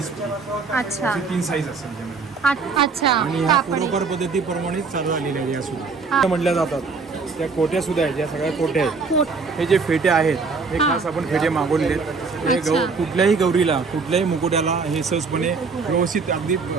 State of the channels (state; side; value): quieter; left; 4.6 dB